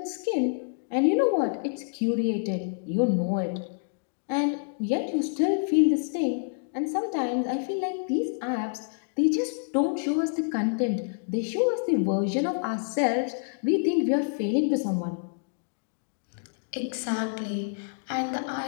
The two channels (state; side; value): silent; right; digital silence